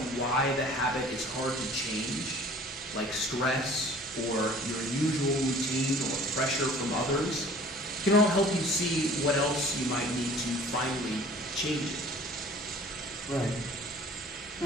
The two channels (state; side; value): normal; both; correlation 0.49